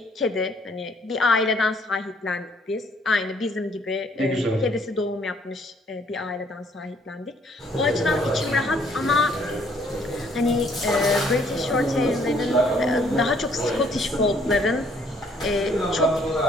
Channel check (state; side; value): normal; both; correlation 0.64